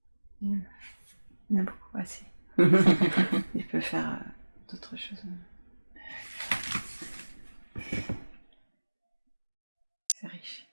Il a beaucoup assez. Il peut faire d'autres choses. C'est riche.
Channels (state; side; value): inverted; both; correlation -1.00